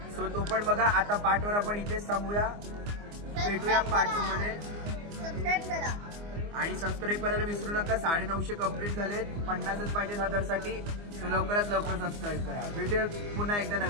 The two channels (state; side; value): late; left; 24 ms